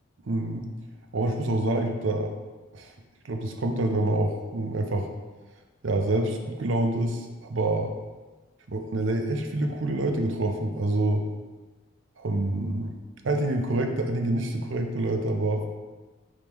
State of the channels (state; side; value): normal; both; correlation 0.54